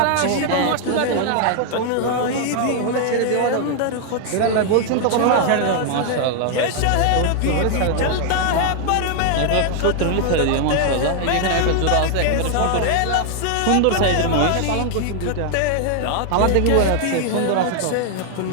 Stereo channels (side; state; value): both; different; correlation 0.00